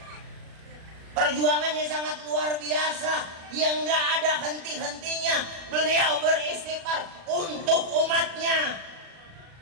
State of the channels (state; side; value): late; left; 37 ms